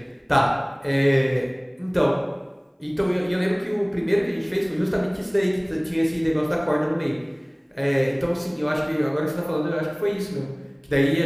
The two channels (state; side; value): identical; both; correlation 1.00